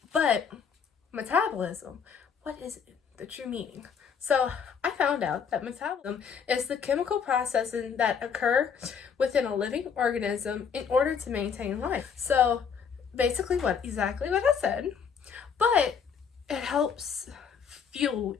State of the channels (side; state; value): right; quieter; 6.7 dB